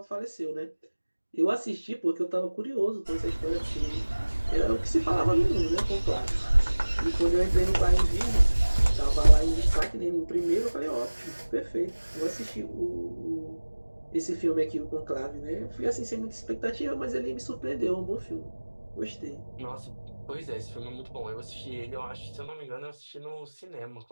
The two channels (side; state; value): both; inverted; correlation -1.00